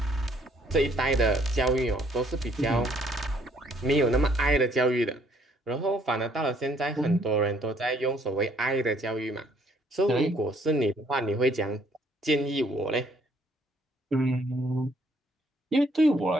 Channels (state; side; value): normal; both; correlation 0.65